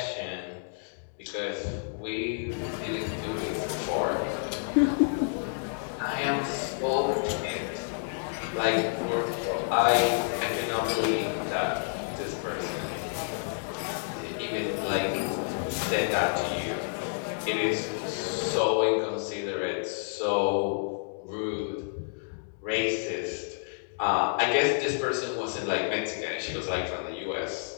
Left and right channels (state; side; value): silent; right; digital silence